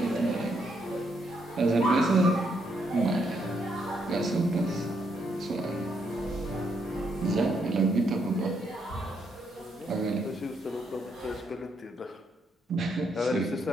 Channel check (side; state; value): both; normal; correlation 0.76